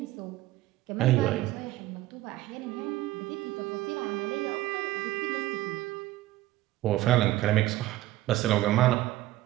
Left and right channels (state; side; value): quieter; left; 16.0 dB